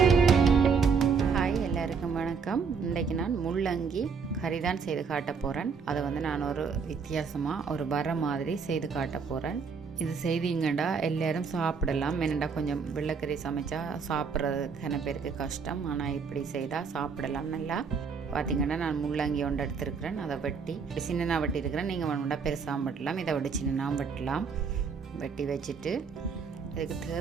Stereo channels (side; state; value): left; quieter; 5.7 dB